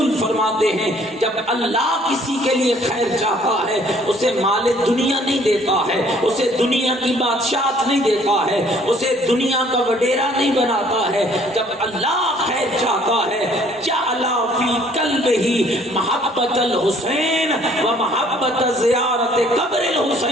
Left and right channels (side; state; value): both; normal; correlation 0.59